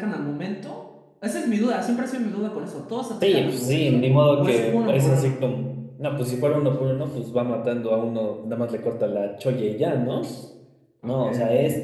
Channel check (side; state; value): both; identical; correlation 1.00